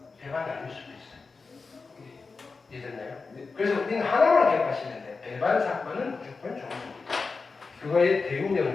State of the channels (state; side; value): quieter; right; 4.4 dB